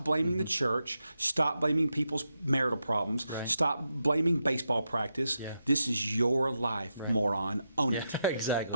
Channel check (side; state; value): both; inverted; correlation -0.86